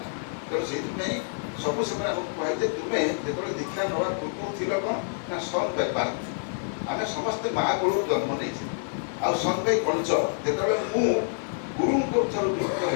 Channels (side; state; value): right; silent; digital silence